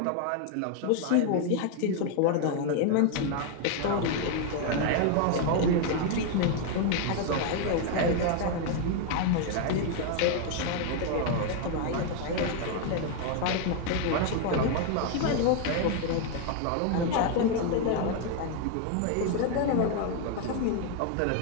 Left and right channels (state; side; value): different; both; correlation 0.00